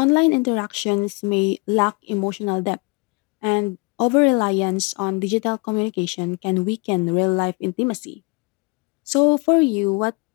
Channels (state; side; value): quieter; right; 29.6 dB